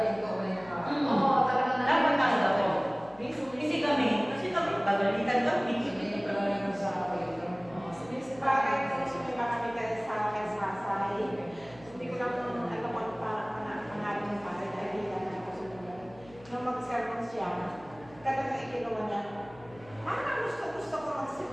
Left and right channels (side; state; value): left; noise; hum, 22 dB below the sound